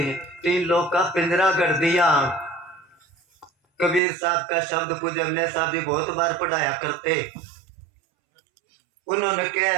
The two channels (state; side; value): drops out; left; at 4.0 s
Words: तीन लोग का पिंजरा कर दिया। कबीर साहब का शब्द पूज्य अमले साहब जी बहुत बार पढ़ाया करते। उन्होंने